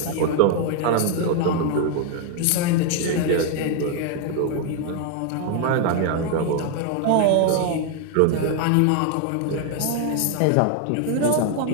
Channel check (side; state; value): both; different; correlation 0.00